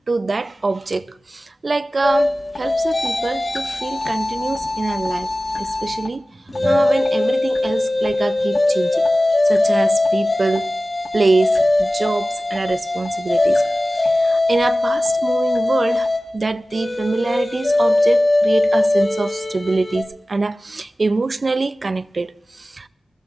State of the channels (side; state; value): both; normal; correlation 0.96